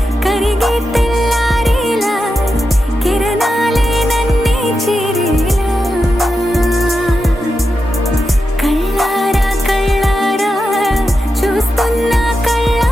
కరిగే తెల్లారేలా కిరణాలే నన్నే చేరేలా కళ్ళారా కళ్ళారా చూస్తున్నా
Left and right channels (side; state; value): both; normal; correlation 0.89